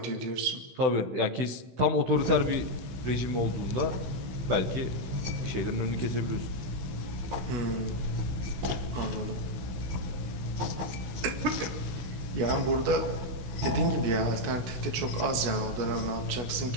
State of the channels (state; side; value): late; left; 16 ms